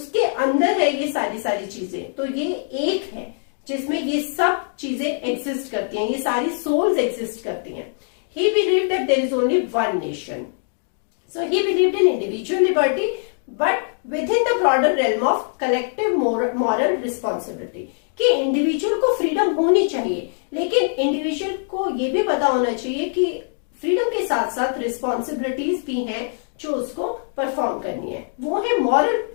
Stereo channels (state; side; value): silent; right; digital silence